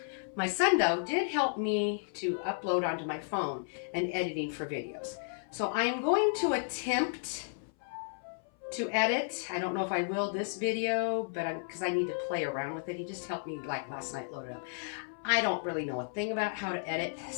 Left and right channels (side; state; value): right; silent; 56 dB below the other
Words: my son though did help me to upload onto my phone and editing for videos. So I am going to attempt to edit. I don't know if I will this video, but because I need to play around with it. He just helped me like last night load it up. I don't really know a thing about how to edit,